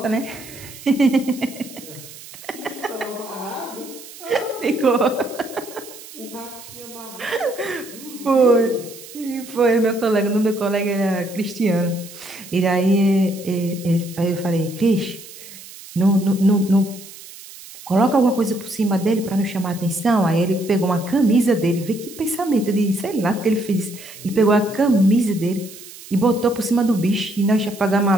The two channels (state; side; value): noise; right; hiss, 17 dB below the sound